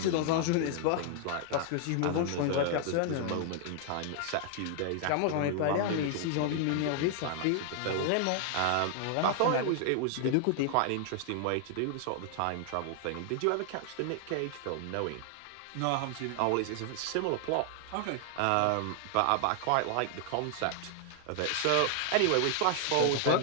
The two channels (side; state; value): both; different; correlation 0.00